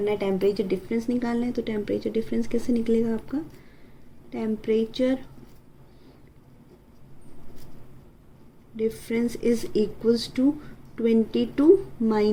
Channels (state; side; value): identical; both; correlation 1.00